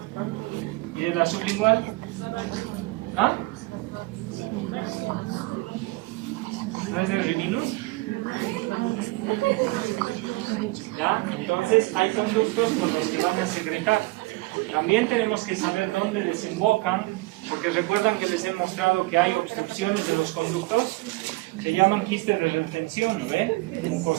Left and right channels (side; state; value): left; quieter; 22.1 dB